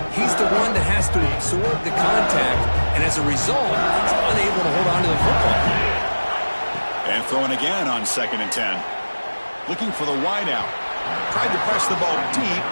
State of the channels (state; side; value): inverted; both; correlation -1.00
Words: he's the one that has to absorb the contact, and as a result, he's unable to hold on to the football. And throwing again on 2nd and 10. Looking for the wideout. Tried to press the ball deep,